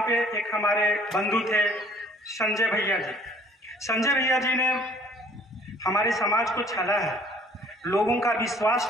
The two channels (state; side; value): normal; both; correlation 0.56